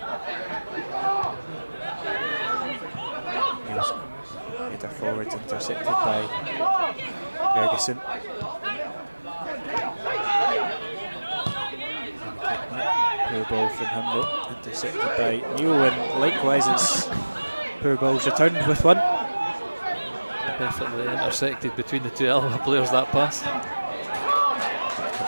Header forwards, intercepted by Ferguson. Poor ball from him though, intercepted by Neil, and likewise it's poor balls returned with one. Perfectly intersected between the two Alloa players, that pass.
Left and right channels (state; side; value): inverted; both; correlation -1.00